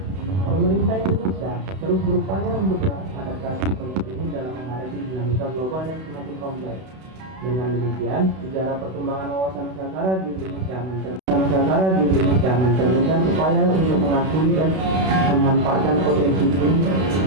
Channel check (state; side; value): late; left; 32 ms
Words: Pemerintah Indonesia terus berupaya untuk beradaptasi konsep ini dalam menghadapi dinamika global yang semakin kompleks. Dengan demikian, sejarah perkembangan wawasan Nusantara di Indonesia mencerminkan upaya untuk mengakui dan memanfaatkan potensi